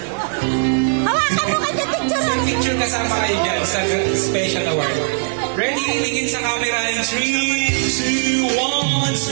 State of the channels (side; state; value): left; silent; digital silence